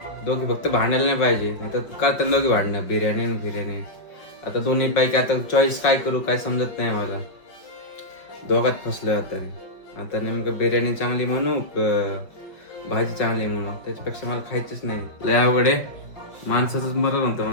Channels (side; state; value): right; late; 5.5 ms